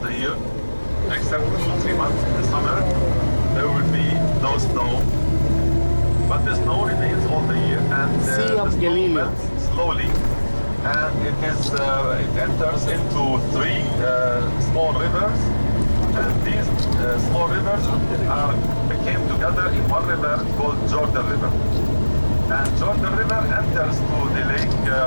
the year, except 2-3 months in the summer, there will be no snow. but the snow remains all the year, and Sea of the snow Galilee. melts slowly, and it enters into three small rivers, and these small rivers came together in one river called Jorden River. And Jordan River enters to the lake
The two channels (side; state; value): both; inverted; correlation -1.00